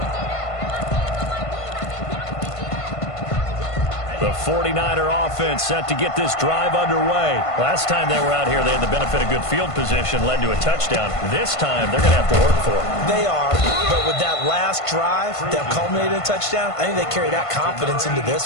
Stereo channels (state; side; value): late; right; 1.5 ms